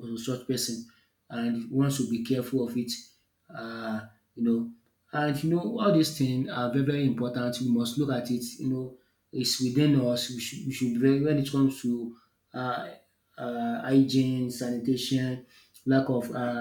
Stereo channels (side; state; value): both; identical; correlation 1.00